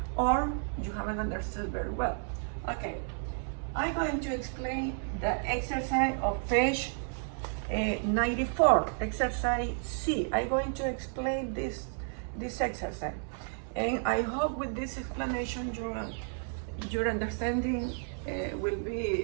or you haven't understood very well. Okay, I'm going to explain the exercise of page 94, exercise C. I'm going to explain this exercise, and I hope with this explanation your understanding will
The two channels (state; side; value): silent; left; 56 dB below the other